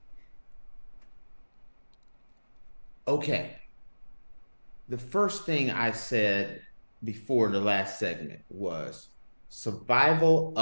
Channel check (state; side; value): inverted; both; correlation -1.00